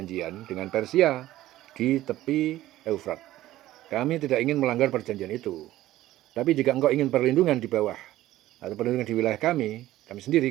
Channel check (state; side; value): quieter; left; 15.1 dB